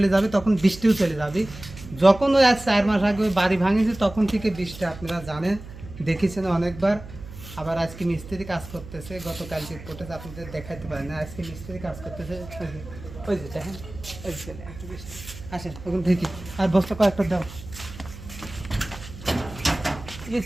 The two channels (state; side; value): noise; right; hum, 15 dB below the sound